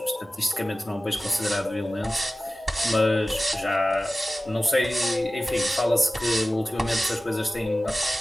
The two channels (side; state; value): both; normal; correlation 0.96